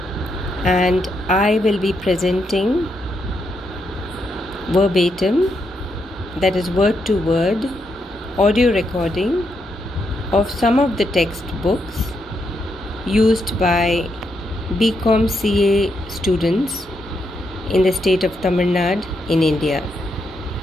and I will be presenting verbatim, that is word to word, audio recording of some of the textbooks used by BCom CA students in the state of Tamil Nadu in India.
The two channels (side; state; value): both; normal; correlation 0.80